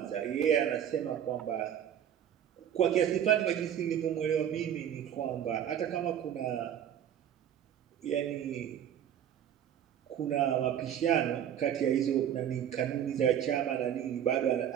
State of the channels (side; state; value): left; quieter; 9.8 dB